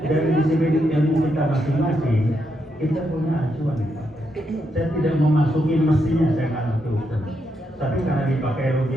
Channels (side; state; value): both; normal; correlation 0.81